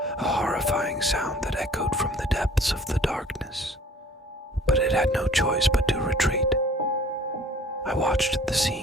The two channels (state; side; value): normal; both; correlation 0.52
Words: a horrifying sound that echoed from the depths of the darkness. But it had no choice but to retreat. I watched the